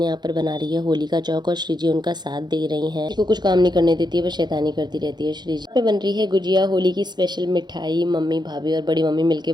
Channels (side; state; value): left; late; 0.21 ms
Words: यहाँ पर बना रही है होली का चौक और श्री जी उनका साथ दे रही हैं। को कुछ काम नहीं करने देती है, बस शैतानी करती रहती है। श्री जी पे बन रही है गुजिया, होली की स्पेशल मिठाई। मम्मी, भाभी और बड़ी मम्मी मिलकर